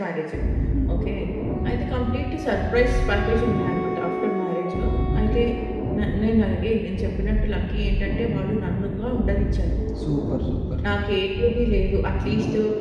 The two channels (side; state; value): both; identical; correlation 1.00